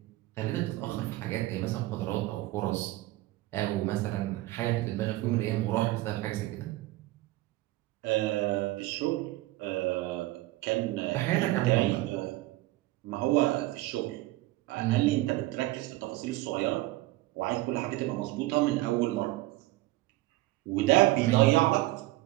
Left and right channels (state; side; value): quieter; left; 18.1 dB